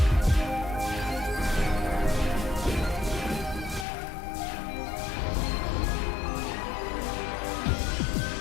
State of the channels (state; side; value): drops out; right; at 3.9 s